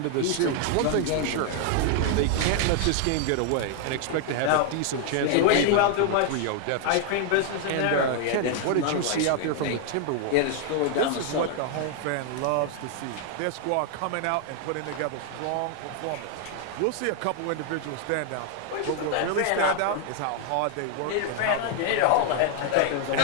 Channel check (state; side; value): different; both; correlation 0.00